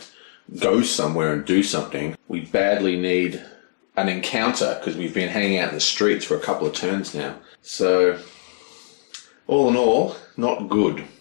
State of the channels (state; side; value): silent; right; digital silence